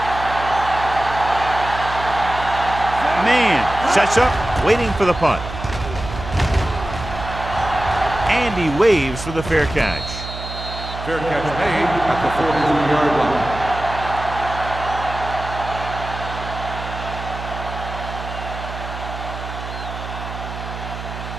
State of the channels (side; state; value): right; noise; hum, 9 dB below the sound